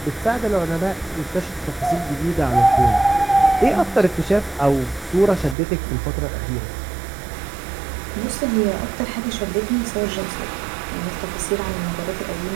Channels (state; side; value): drops out; left; at 5.6 s